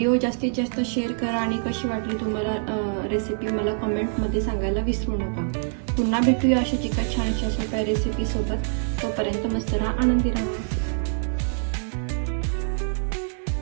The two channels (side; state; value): left; silent; digital silence